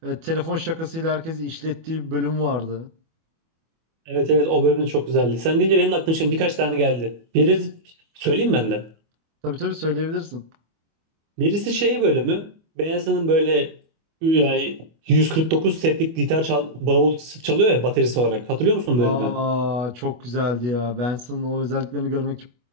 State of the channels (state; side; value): late; left; 25 ms